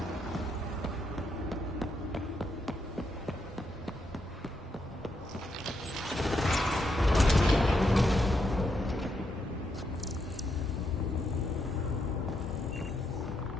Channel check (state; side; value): normal; both; correlation 0.80